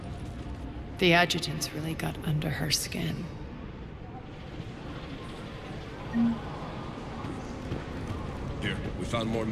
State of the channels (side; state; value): both; identical; correlation 1.00